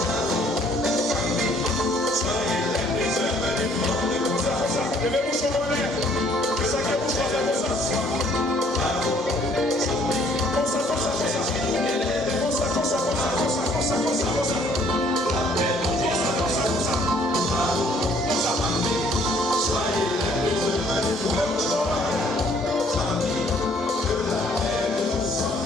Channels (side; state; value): both; normal; correlation 0.62